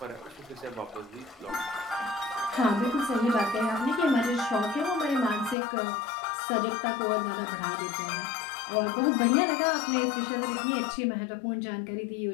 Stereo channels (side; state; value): right; drops out; at 5.6 s